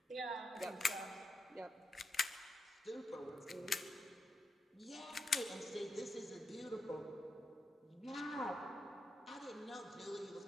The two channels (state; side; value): normal; both; correlation 0.85